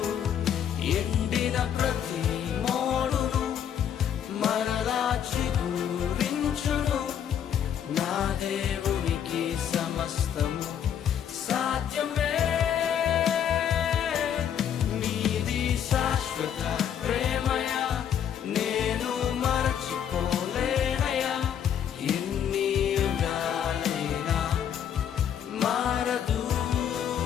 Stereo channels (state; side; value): quieter; right; 9.1 dB